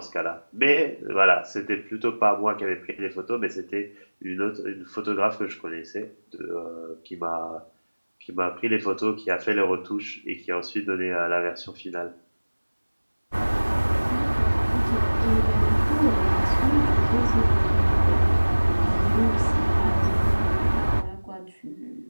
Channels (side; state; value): both; inverted; correlation -1.00